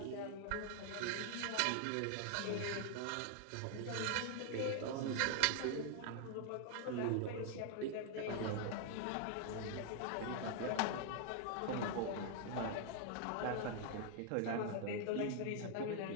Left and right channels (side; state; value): both; different; correlation 0.00